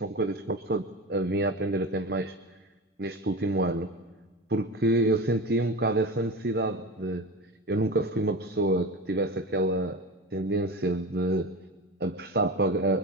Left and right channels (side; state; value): both; normal; correlation 0.27